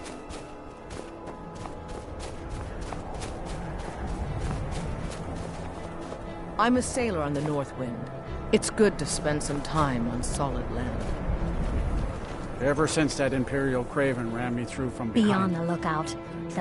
I'm a sailor on the North Wind. It's good to spend some time on solid land. Ever since that Imperial Craven ran me through from behind. Be on the lookout.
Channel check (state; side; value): identical; both; correlation 1.00